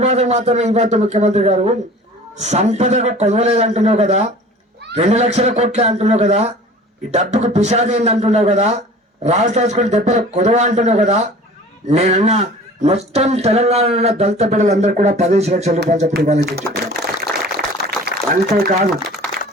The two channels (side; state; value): both; normal; correlation 0.44